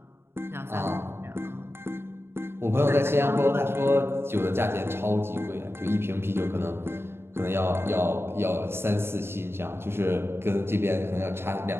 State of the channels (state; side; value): late; left; 0.12 ms